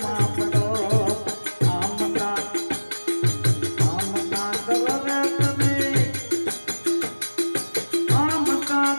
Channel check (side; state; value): both; inverted; correlation -1.00